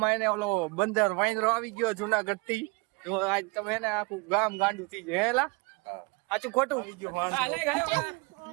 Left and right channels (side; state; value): left; quieter; 28.6 dB